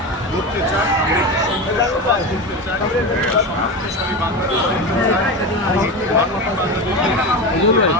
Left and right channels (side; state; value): both; normal; correlation 0.21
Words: গড়তে চাই, আমরা একটি সুন্দর সমাজ গড়তে চাই, সমৃদ্ধশালী বাংলাদেশ গড়তে চাই, একটি মানবিক বাংলাদেশ গড়তে চাই।